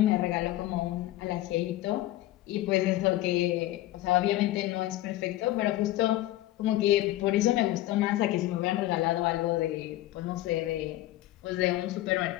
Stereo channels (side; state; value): right; quieter; 15.7 dB